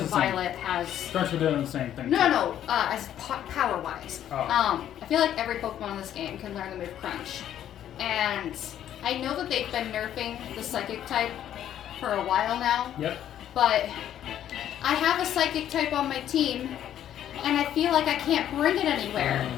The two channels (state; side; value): quieter; right; 10.9 dB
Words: the same. Violet has... Crunch would do the same thing. No, as power-wise. Oh. I feel like every Pokemon in this game can learn the move Crunch. And I know that they've been nerfing the Psychic type for a while now. Yep. But I have a Psychic type on my team, and I feel like I can't bring it anywhere.